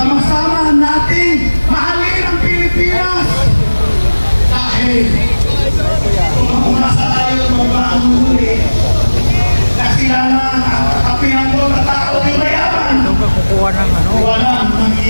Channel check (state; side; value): inverted; both; correlation -1.00